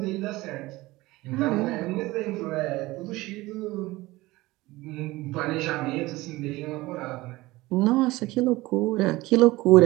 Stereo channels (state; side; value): quieter; left; 19.7 dB